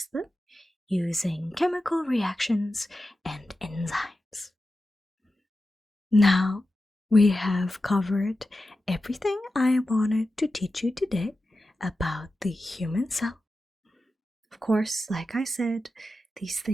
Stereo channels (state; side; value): normal; both; correlation 0.92